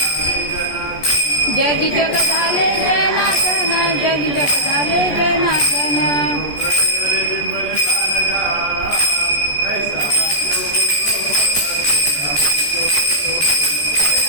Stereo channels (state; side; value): late; right; 14 ms